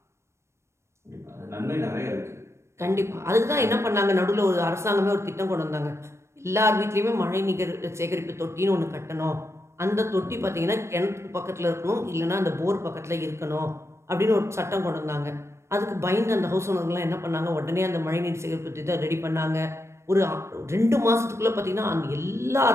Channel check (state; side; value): late; left; 0.13 ms